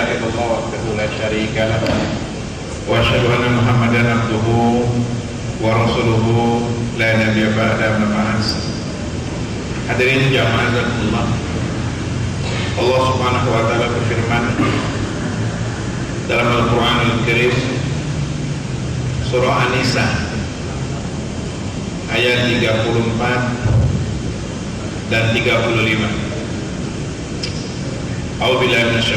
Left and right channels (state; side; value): identical; both; correlation 1.00